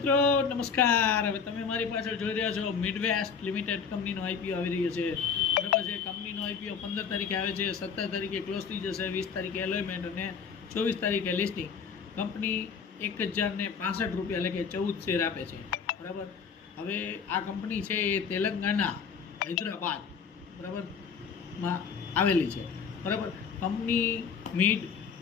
નમસ્કાર. હવે તમે મારી પાછળ જોઈ રહ્યા છો મિડવેસ્ટ લિમિટેડ કંપનીનો આઈપીઓ આવી રહ્યો છે. બરાબર છે. કંપનીનો આઈપીઓ 15 તારીખે આવે છે, 17 તારીખે ક્લોઝ થઈ જશે, 20 તારીખે એલોયમેન્ટ અને 24 તારીખે લિસ્ટિંગ. કંપની 1065 રૂપિયા એટલે કે 14 શેર આપે છે. બરાબર. હવે આ કંપની છે એ તેલંગાણા, હૈદરાબાદ બરાબર માં આવેલી છે. બરાબર. Company mid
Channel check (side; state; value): right; quieter; 6.3 dB